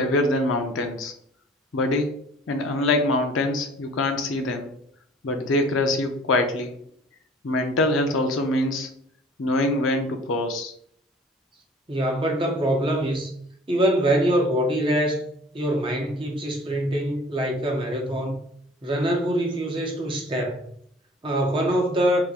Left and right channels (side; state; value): both; normal; correlation 0.50